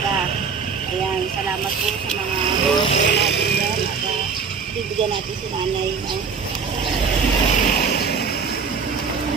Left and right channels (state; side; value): quieter; left; 5.7 dB